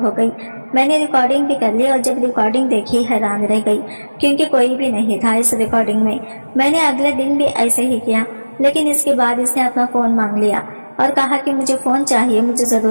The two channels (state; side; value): inverted; both; correlation -1.00